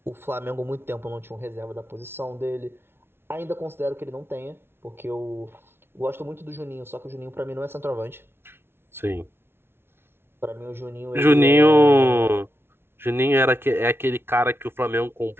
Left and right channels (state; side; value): late; left; 0.11 ms